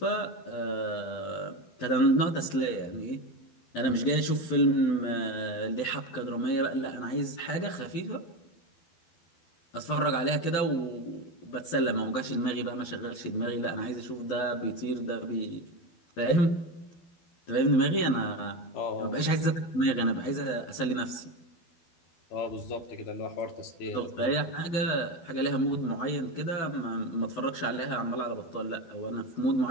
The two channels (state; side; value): late; right; 12 ms